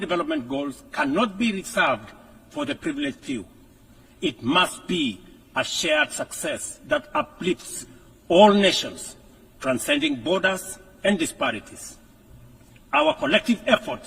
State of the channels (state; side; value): identical; both; correlation 1.00